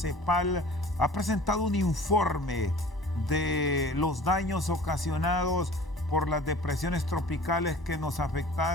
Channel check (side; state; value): both; normal; correlation 0.45